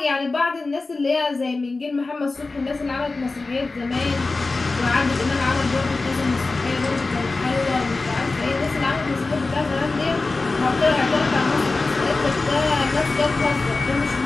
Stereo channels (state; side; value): quieter; right; 3.6 dB